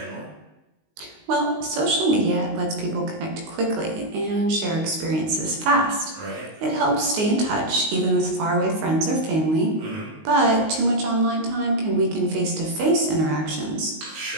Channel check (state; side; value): late; left; 19 ms